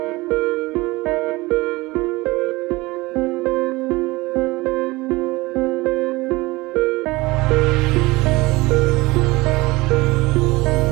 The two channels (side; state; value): left; quieter; 21.7 dB